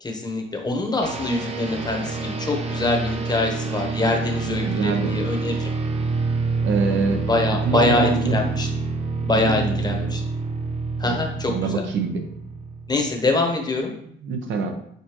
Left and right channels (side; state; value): both; normal; correlation 0.53